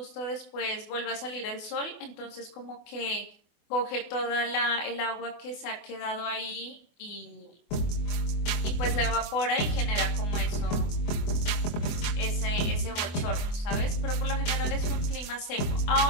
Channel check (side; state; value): right; late; 24 ms